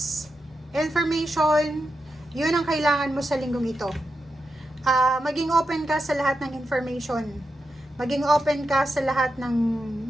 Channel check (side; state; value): both; normal; correlation 0.88